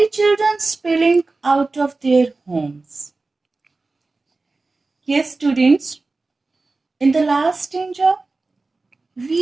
children spilling out of their homes. Yes, students, in the last stanza,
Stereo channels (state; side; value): quieter; left; 3.5 dB